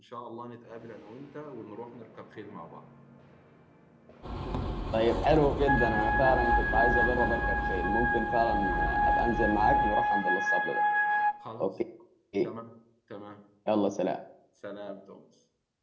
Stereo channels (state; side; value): identical; both; correlation 1.00